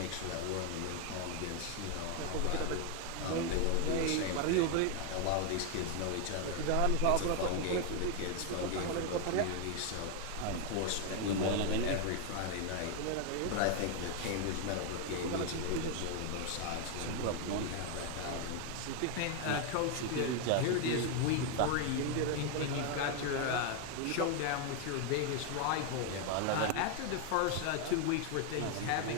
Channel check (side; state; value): both; different; correlation 0.01